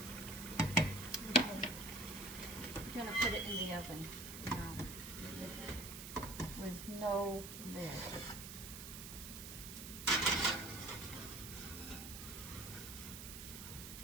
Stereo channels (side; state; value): right; noise; hiss, 9 dB below the sound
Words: gonna put it in the oven now with no lid.